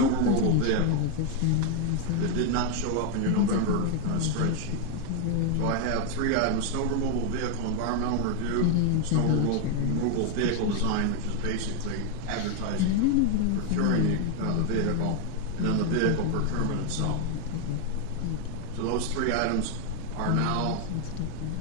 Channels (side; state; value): both; different; correlation 0.01